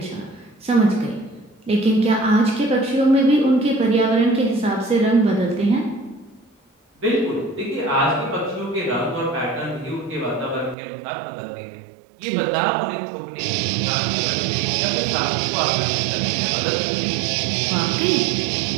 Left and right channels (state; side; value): drops out; left; at 10.8 s